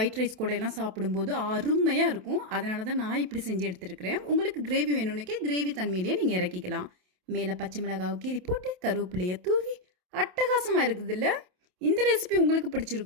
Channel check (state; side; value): late; left; 27 ms